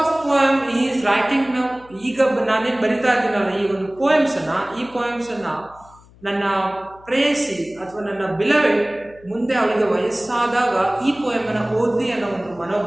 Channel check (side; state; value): left; noise; hum, 26 dB below the sound